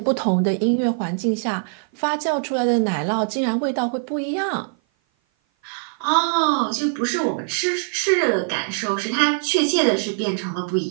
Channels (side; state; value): left; silent; 56 dB below the other